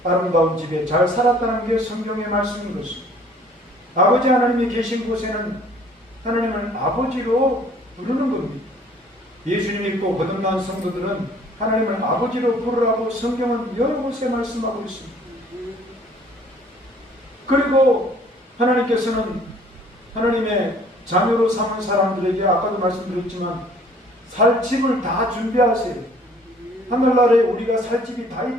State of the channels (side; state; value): both; normal; correlation 0.56